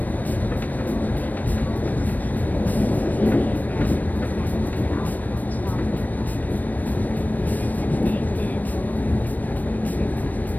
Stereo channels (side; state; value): right; late; 0.083 ms